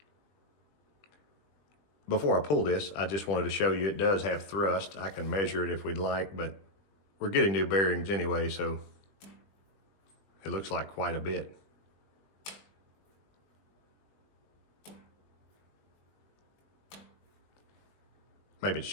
Before I pull this, I just wanted to show you it does have thrust. I can measure it if we'd like, but we're getting new bearings anyway, so it looks like quite a bit. Maybe it's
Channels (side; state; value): right; late; 20 ms